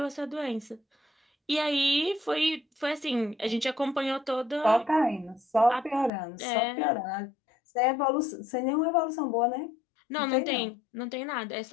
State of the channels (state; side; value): drops out; right; at 6.1 s